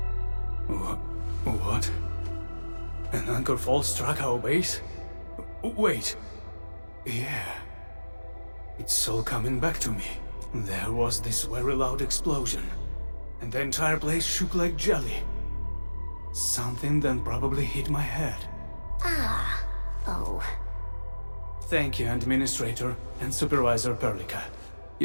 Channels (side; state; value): both; inverted; correlation -1.00